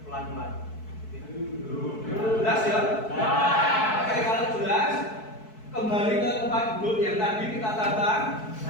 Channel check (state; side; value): late; right; 4.6 ms